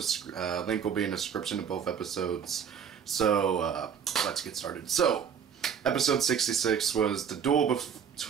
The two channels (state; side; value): quieter; left; 7.6 dB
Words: Link will be in the description of both episodes. So, let's get started. So, episode 66 was the duel